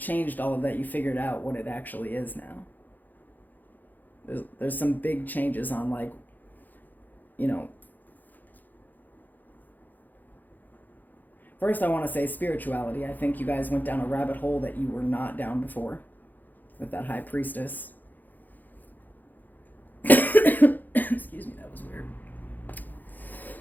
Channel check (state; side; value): late; right; 0.085 ms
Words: all of that. You figured out what it actually is now. There's some big changes on first I want to say spirituality. I think you guys went down a rabbit hole that you were not down before with that high priestess. Excuse me, that was weird.